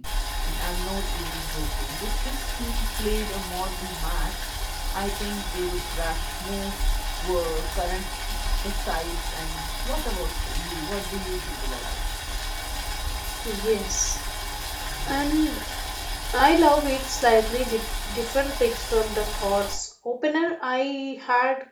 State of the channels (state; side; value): identical; both; correlation 1.00